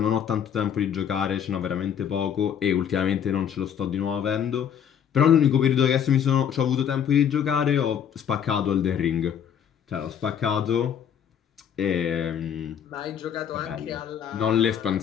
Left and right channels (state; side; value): quieter; right; 8.6 dB